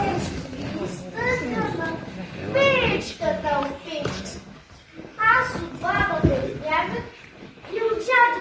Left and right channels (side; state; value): both; identical; correlation 1.00